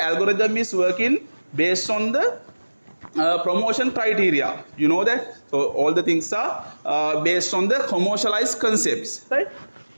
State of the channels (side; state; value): both; inverted; correlation -1.00